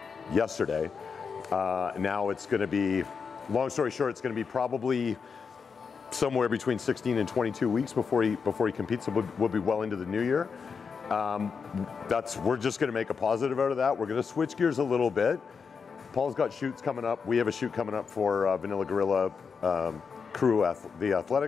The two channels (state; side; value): quieter; right; 5.7 dB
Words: yesterday. Now it's going to be, long story short, it's going to be probably somewhere between 16 and 22 weeks before he competes. So we'll be well into the new year. We're just going to make a positive out of that. We're going to switch gears a little bit. Paul's got shoots coming up. We have a shoot coming up for Vanilla Gorilla Crew, the